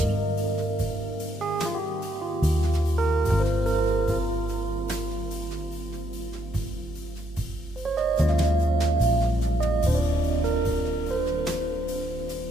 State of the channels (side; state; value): both; normal; correlation 0.73